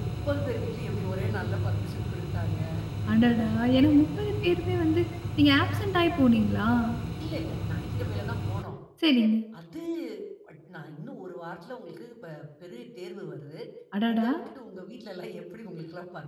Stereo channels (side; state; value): both; identical; correlation 1.00